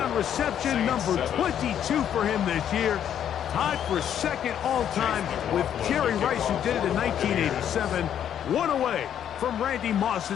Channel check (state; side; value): quieter; right; 9.7 dB